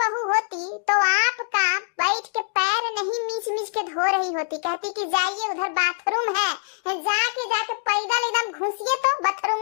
बहू होती तो आपका बैठ के पैर नहीं मीच मीच के धो रही होती, कहती कि जाइए उधर बाथरूम है, जाके पैदल एकदम घुसिए तो बाथरूम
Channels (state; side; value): silent; right; digital silence